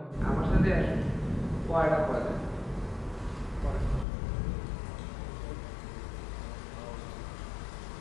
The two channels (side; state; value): right; drops out; at 4.0 s